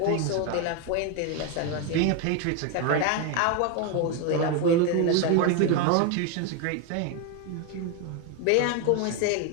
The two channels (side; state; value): both; different; correlation 0.02